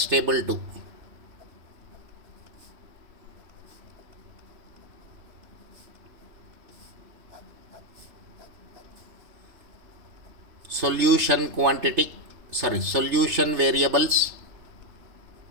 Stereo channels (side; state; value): left; late; 3.4 ms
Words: table 2. Solution variables.